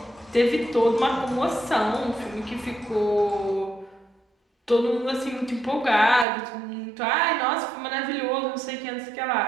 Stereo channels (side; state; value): left; drops out; at 6.2 s